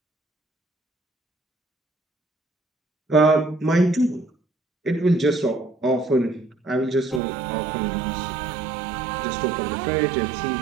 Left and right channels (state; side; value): drops out; left; at 7.2 s